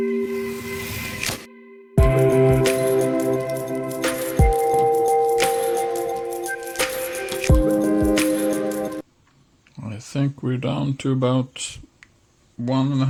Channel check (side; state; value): both; identical; correlation 1.00